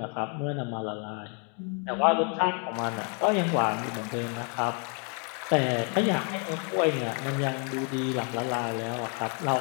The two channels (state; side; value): quieter; right; 39.3 dB